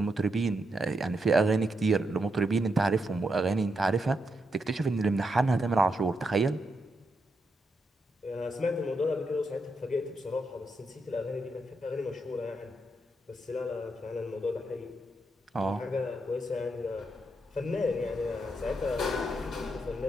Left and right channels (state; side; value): normal; both; correlation 0.82